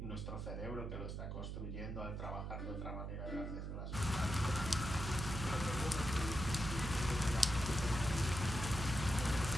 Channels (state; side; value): noise; right; hum, 5 dB below the sound